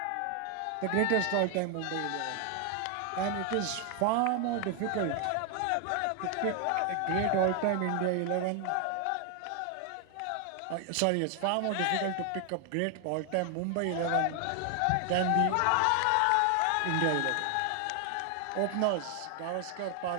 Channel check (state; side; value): different; both; correlation 0.00